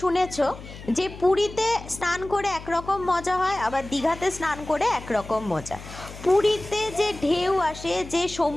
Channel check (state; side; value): noise; left; hum, 14 dB below the sound